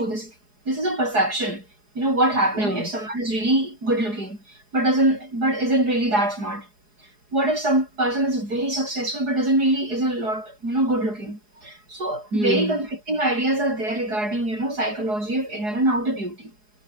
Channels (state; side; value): late; left; 4.8 ms